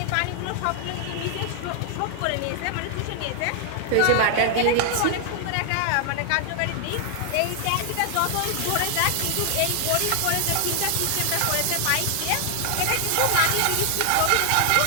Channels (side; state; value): both; different; correlation 0.00